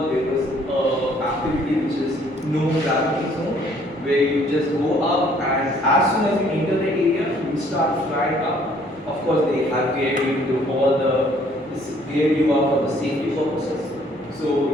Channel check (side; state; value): both; normal; correlation 0.61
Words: there was an activity which is no gravity zone, where you just go up and as soon as you enter the area, you start flying up. Of course, they have geared you to all geared you up for the safety purposes. So